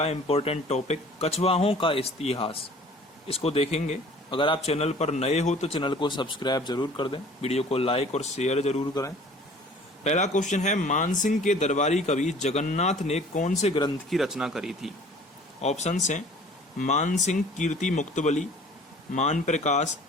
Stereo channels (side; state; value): both; normal; correlation 0.49